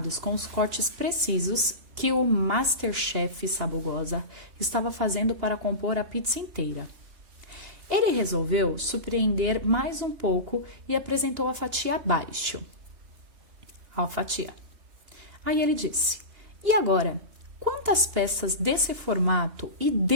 com os cortes precisos que o Masterchef Sabugosa estava fazendo para compor a pizza inteira. Ele resolveu surpreender mais um pouco e apresentou a fatia abaixo. A fatia. Aí ele disse: "E agora, quantas peças desse formato e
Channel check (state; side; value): late; left; 2.8 ms